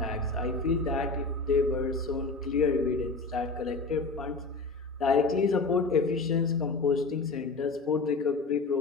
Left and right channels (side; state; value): right; quieter; 3.8 dB